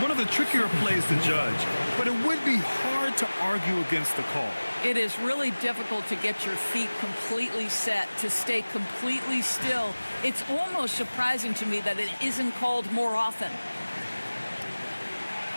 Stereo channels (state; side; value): inverted; both; correlation -1.00